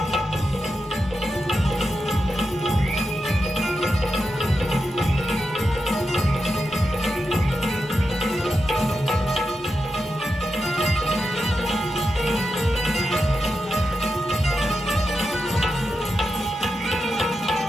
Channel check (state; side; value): normal; both; correlation 0.88